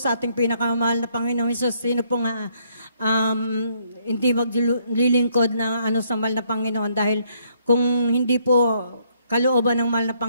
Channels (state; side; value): inverted; both; correlation -0.70